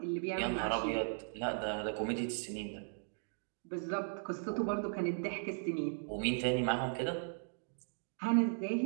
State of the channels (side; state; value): left; silent; digital silence